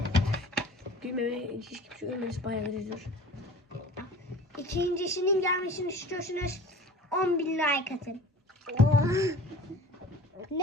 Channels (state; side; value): normal; both; correlation 0.42